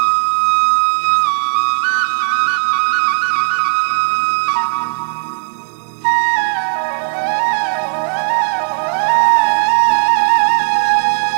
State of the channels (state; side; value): silent; left; 60 dB below the other